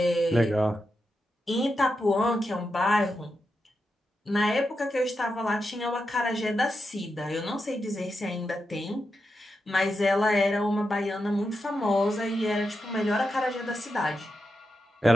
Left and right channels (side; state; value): both; normal; correlation 0.87